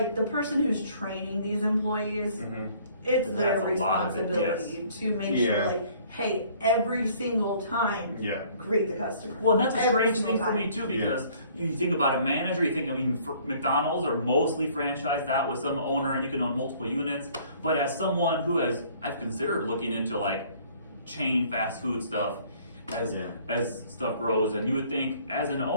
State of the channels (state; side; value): inverted; both; correlation -0.57